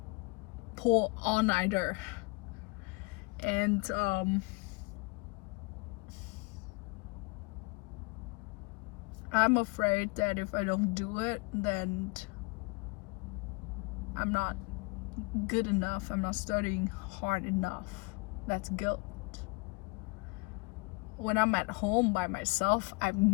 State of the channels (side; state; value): right; quieter; 27.1 dB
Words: pull all-nighter. And I'm afraid that if I don't do it, then I'm not good enough, I'm not studying hard enough. That's guilt. When I'm at home by myself, I've